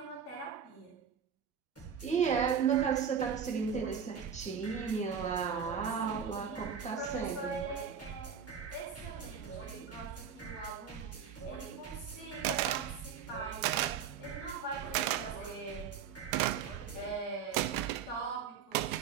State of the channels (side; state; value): left; quieter; 7.3 dB